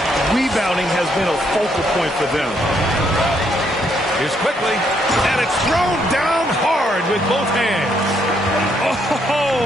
rebounding has been a focal point for them. Here's quickly, and it's thrown down hard with both hands. Oh,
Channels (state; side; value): normal; both; correlation 0.73